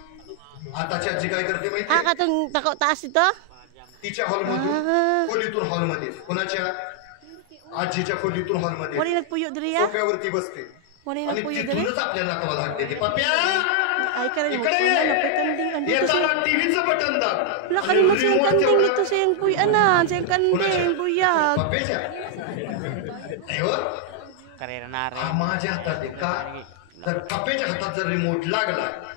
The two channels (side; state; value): both; different; correlation 0.00